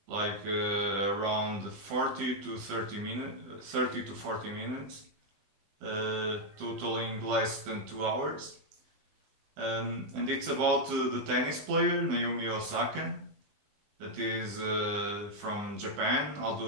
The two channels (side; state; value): left; late; 20 ms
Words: around 40 to 30 minutes, 30 to 40 minutes, totaling less than 2 hours. And it's about the tennis player Naomi Osaka, that is from Japan, although